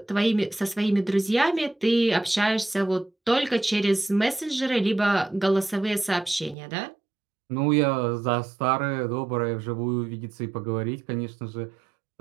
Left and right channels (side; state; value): left; drops out; at 6.6 s